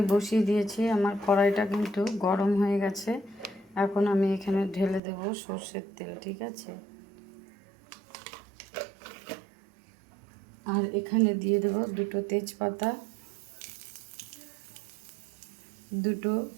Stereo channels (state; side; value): drops out; left; at 5.0 s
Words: বসিয়ে দিয়েছি, আমার কড়াইটা কিন্তু গরম হয়ে গেছে। এখন আমি এখানে ঢেলে দেব সর্ষের তেল, ঠিক আছে। আর এখানে দিয়ে দেব দুটো তেজপাতা, দুটো